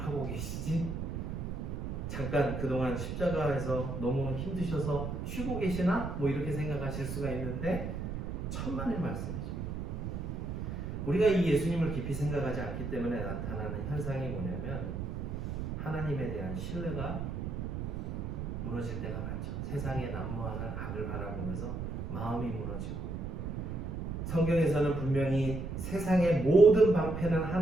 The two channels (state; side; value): noise; right; rumble, 4 dB below the sound